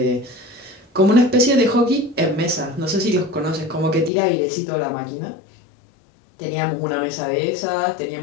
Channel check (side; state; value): right; drops out; at 4.1 s